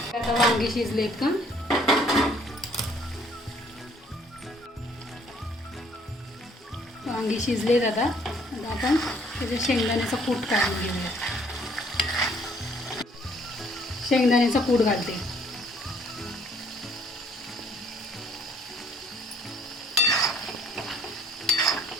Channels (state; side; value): normal; both; correlation 0.62